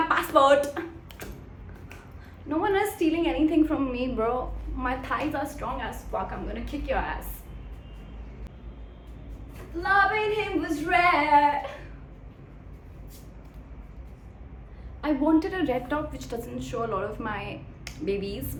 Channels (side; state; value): both; identical; correlation 1.00